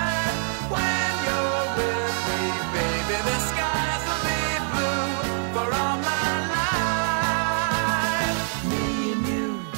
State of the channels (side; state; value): left; silent; 62 dB below the other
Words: When you're with me, baby, the skies will be blue for all my life. Me and you,